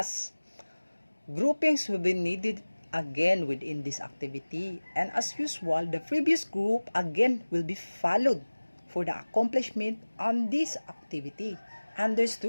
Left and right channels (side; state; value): both; inverted; correlation -1.00